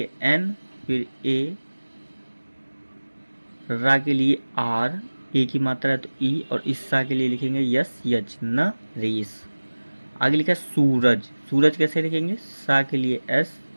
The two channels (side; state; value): both; inverted; correlation -1.00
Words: एन, फिर ए, रा के लिए आर, ए की मात्रा है तो ई, और इस सा के लिए लिखेंगे यस यच न रेस। आगे लिखा है सूरज। सूरज कैसे लिखेंगे? सा के लिए एस,